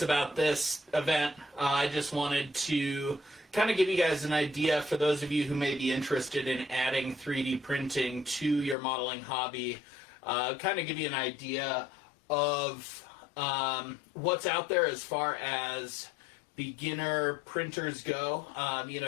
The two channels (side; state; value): right; drops out; at 8.8 s